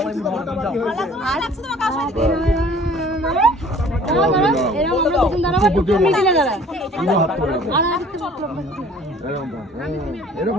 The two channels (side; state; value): both; normal; correlation 0.51